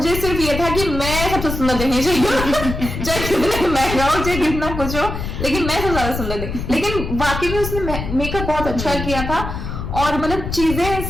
सिर्फ ये था कि मैं सबसे सुंदर दिखनी चाहिए, चाहे कितना महंगा हो, चाहे कितना कुछ हो, लेकिन मैं सबसे ज्यादा सुंदर दिख। लेकिन वाकई में उसने मेकअप बहुत अच्छा किया था। और मतलब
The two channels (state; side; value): noise; left; rumble, 5 dB below the sound